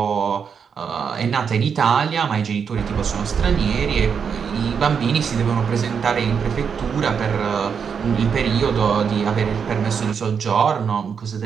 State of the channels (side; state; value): left; quieter; 6.7 dB